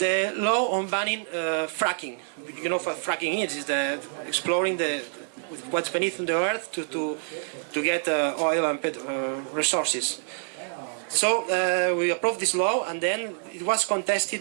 law on banning fracking. You know what fracking is the exploring what's beneath the earth to get oil and resources. So we approved this law, and then it was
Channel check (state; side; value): silent; left; 60 dB below the other